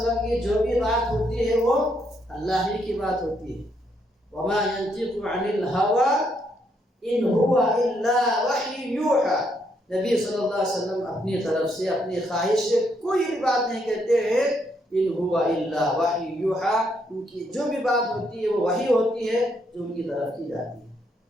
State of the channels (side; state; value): both; normal; correlation 0.75